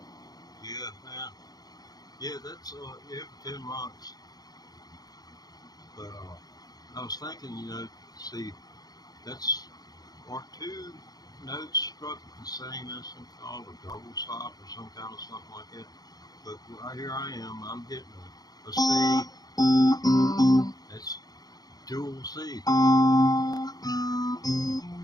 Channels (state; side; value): late; right; 0.19 ms